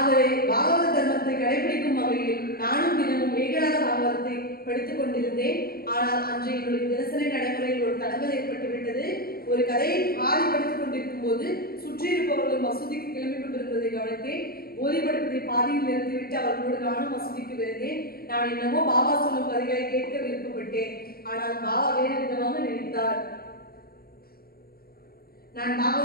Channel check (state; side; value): late; right; 0.44 ms